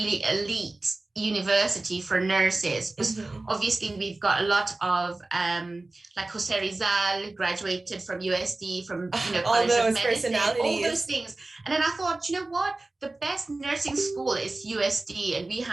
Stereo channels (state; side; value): quieter; left; 3.0 dB